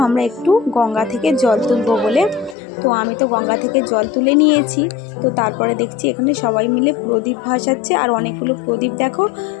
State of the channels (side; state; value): right; drops out; at 2.6 s